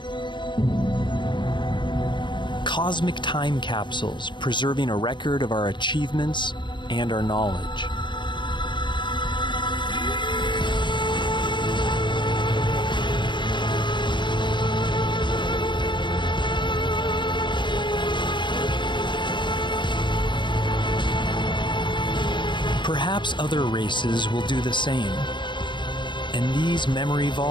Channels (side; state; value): right; late; 0.23 ms